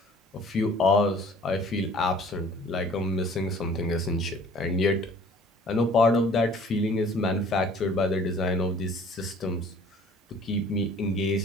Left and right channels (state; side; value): normal; both; correlation 0.52